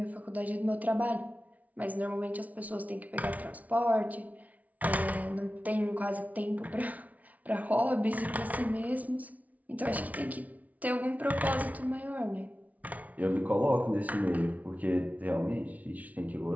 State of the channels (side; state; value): left; late; 0.071 ms